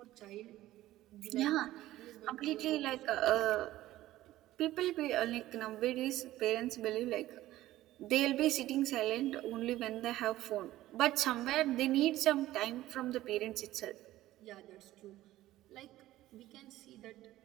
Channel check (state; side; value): quieter; left; 15.4 dB